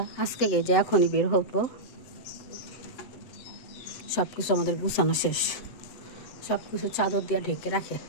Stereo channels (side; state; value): right; late; 7.9 ms